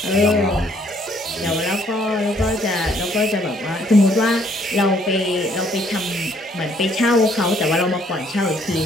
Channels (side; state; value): both; normal; correlation 0.65